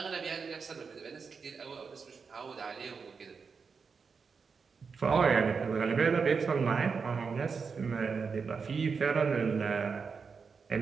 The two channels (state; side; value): quieter; left; 5.4 dB